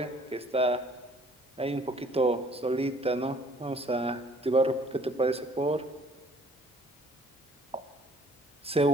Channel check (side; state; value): both; normal; correlation 0.57